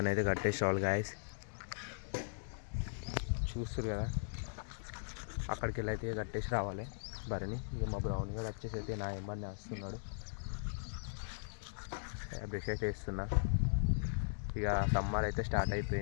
కట్టేసి రావాలి గాయస్. చూస్తారు కదా, అక్కడికి వెళ్ళి అయితే కట్టేసి రావాలి బర్రెని. ఇక మా బ్రౌన్ గారు వచ్చేసి అయితే నా ఏమన్నా వస్తున్నాడు, బ్రష్ అయితే వేస్తున్నా. ఇక సమ్మర్ అయితే స్టార్ట్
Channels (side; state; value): right; silent; digital silence